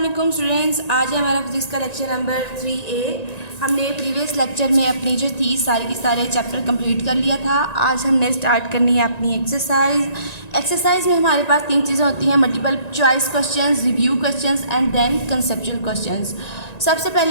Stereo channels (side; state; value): right; late; 1.9 ms